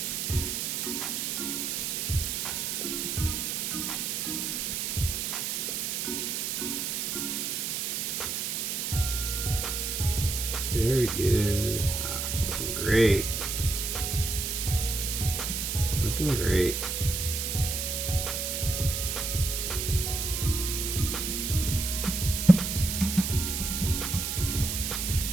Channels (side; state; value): right; noise; hiss, 1 dB below the sound